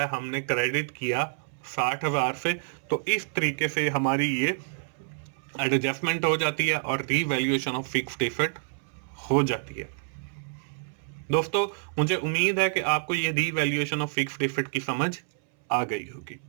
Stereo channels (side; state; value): left; silent; 60 dB below the other